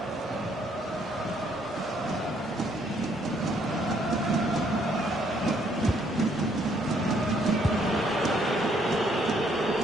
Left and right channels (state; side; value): normal; both; correlation 0.68